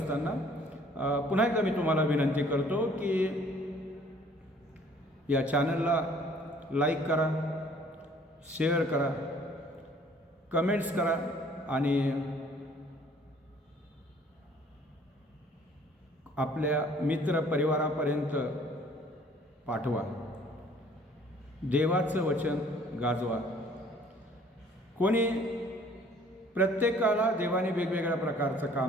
पुन्हा एकदा मी तुम्हाला विनंती करतो की या चॅनलला लाईक करा, शेअर करा, कमेंट्स करा आणि आपल्या मित्रपरिवारापर्यंत पाठवा. देवाचं वचन गाजवा. कोणी प्रत्येकाला देवाने वेगवेगळ्या प्रकारचं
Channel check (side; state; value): both; normal; correlation 0.56